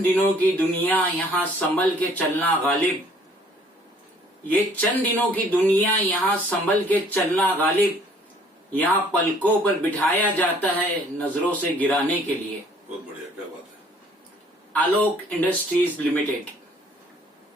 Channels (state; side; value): normal; both; correlation 0.58